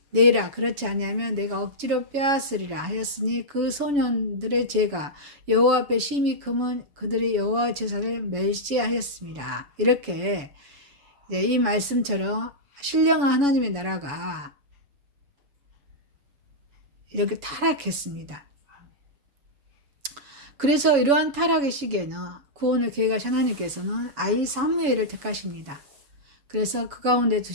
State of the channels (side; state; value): left; late; 7.1 ms